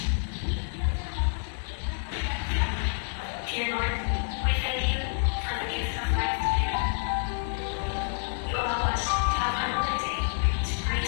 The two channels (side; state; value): right; silent; digital silence